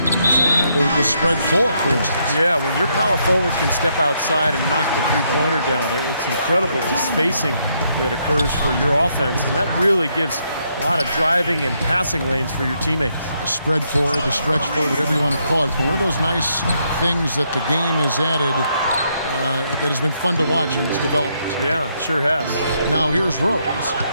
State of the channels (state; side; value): inverted; both; correlation -0.75